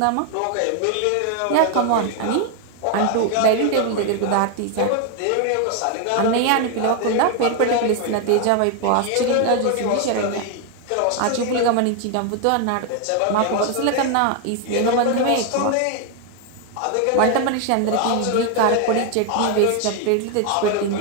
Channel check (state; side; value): different; both; correlation 0.01